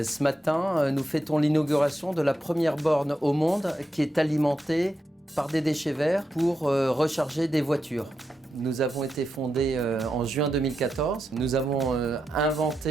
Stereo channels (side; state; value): both; normal; correlation 0.86